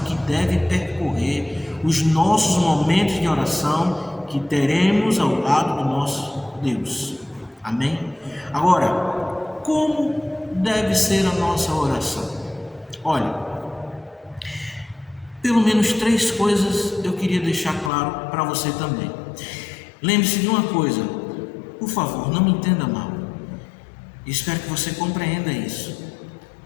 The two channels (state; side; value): drops out; right; at 17.9 s